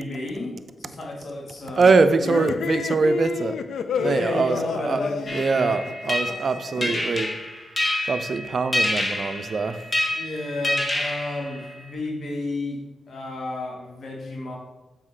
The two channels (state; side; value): normal; both; correlation 0.87